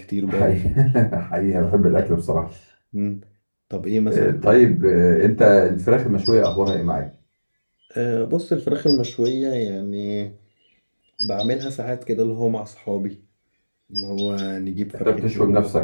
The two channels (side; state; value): both; inverted; correlation -1.00